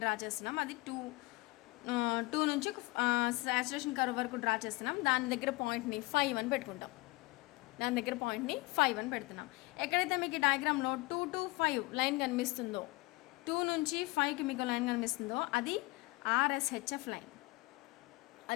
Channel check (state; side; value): quieter; right; 22.8 dB